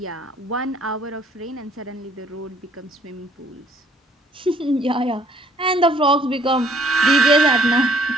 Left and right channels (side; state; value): both; normal; correlation 0.61